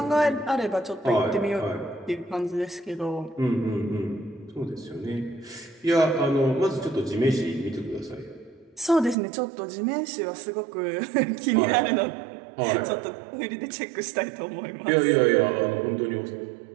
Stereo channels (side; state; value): left; drops out; at 9.2 s